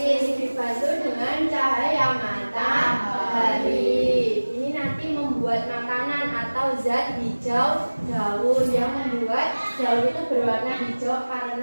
dibantu dengan cahaya matahari. Ini nanti membuat makanan atau zat hijau daun yang membuat daun itu berwarna hijau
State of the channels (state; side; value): inverted; both; correlation -1.00